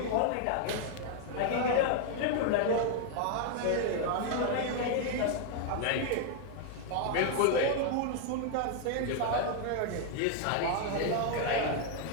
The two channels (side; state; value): both; different; correlation 0.00